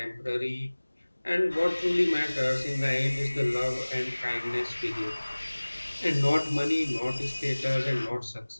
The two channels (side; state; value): both; inverted; correlation -1.00